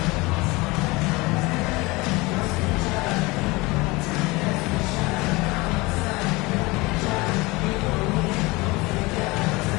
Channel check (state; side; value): quieter; right; 23.4 dB